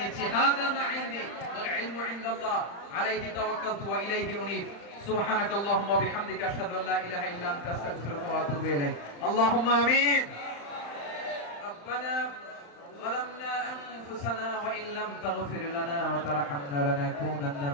নিচ্ছি। হাযা মা ইনদি ওয়াল ইলমু ইনদাল্লাহ আলাইহি তাওয়াক্কালতু ওয়া ইলাইহি উনীব। সুবহানাকাল্লাহুম্মা ওয়া বিহামদিকা আশহাদু আল্লা ইলাহা ইল্লা আনতা আস্তাগফিরুকা ওয়া আতুবু ইলাইক। আল্লাহুম্মা আমিন। রব্বানা ظلمنا أنفسنا وإن لم تغفر لنا وترحمنا لنكونن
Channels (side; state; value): right; late; 35 ms